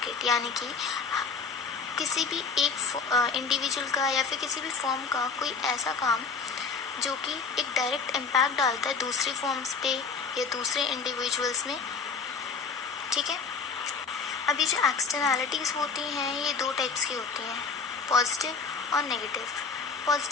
यानी कि किसी भी एक individual का या फिर किसी भी फर्म का कोई ऐसा काम जो कि एक डायरेक्ट इम्पैक्ट डालता है दूसरी फर्म्स पे या दूसरे इंडिविजुअल्स में. ठीक है. अभी जो एक्सटर्नैलिटीज़ होती हैं ये दो टाइप्स की होती हैं, पॉजिटिव और नेगेटिव.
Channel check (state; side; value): quieter; right; 5.3 dB